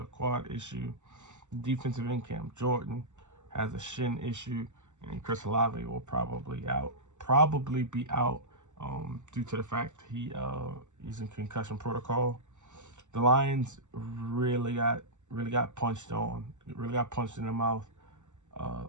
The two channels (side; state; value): left; late; 0.84 ms